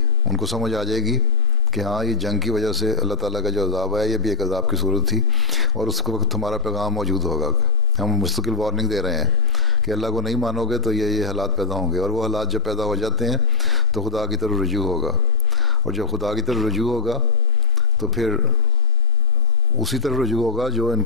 ان کو سمجھ آ جائے گی کہ ہاں یہ جنگ کی وجہ سے اللہ تعالیٰ کا جو عذاب ہے یہ بھی ایک عذاب کی صورت تھی، اور اس وقت ہمارا پیغام موجود ہوگا. ہم مستقل وارننگ دے رہے ہیں کہ اللہ کو نہیں مانو گے تو یہ حالات پیدا ہوں گے، اور وہ حالات جب پیدا ہو جاتے ہیں تو خدا کی طرف رجوع ہوگا. اور جب خدا کی طرف رجوع ہوگا تو پھر اسی طرف رجوع ہوگا جو ان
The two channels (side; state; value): both; normal; correlation 0.47